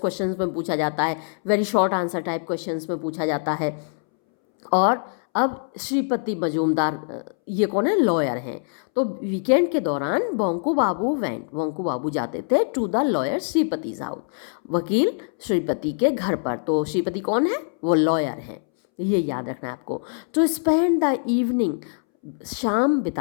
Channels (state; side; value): silent; right; 63 dB below the other